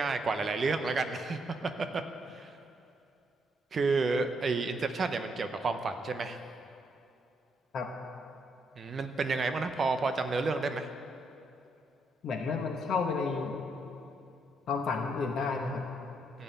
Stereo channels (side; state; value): both; normal; correlation 0.76